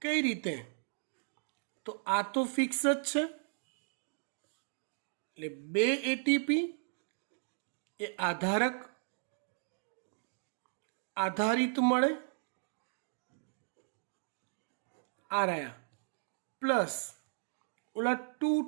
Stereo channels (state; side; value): silent; left; digital silence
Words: કઈ રીતે? તો આ તો ફિક્સ જ છે, એટલે 2 એટીપી એ આધારિત મળે, આ રહ્યા, પ્લસ ઓલા 2